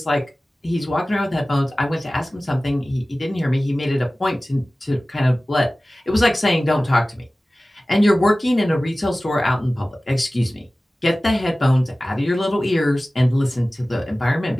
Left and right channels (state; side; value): normal; both; correlation 0.97